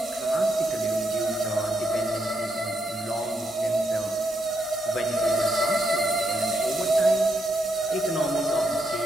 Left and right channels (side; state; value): both; normal; correlation 0.79